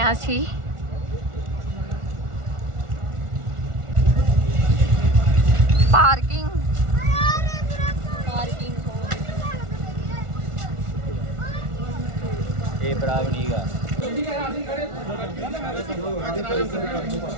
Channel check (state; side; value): late; left; 1.4 ms